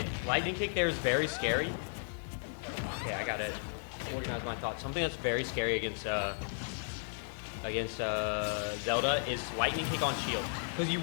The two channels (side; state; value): right; silent; digital silence